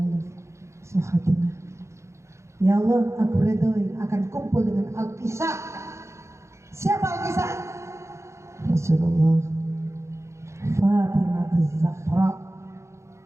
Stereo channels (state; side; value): late; left; 0.14 ms